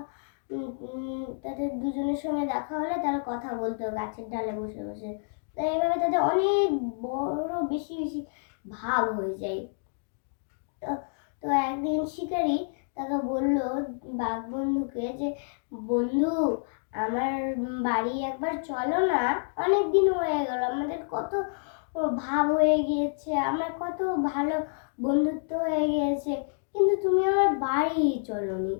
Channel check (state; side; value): silent; right; digital silence